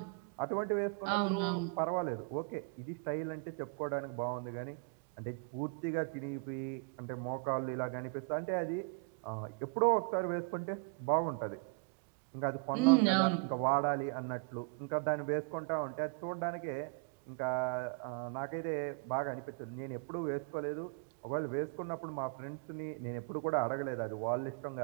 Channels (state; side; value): quieter; left; 31.8 dB